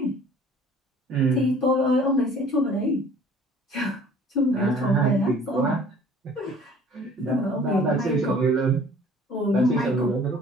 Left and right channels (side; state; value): both; normal; correlation 0.51